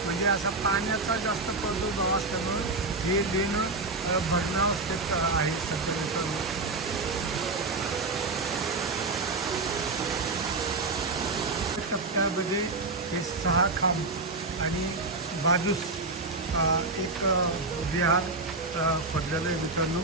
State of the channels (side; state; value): left; quieter; 3.4 dB